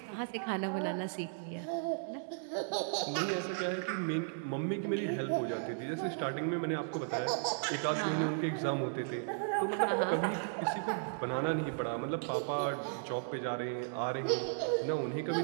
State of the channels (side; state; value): left; silent; digital silence